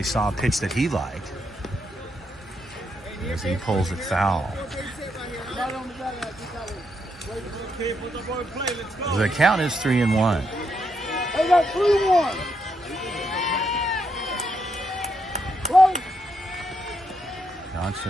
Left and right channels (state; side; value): normal; both; correlation 0.79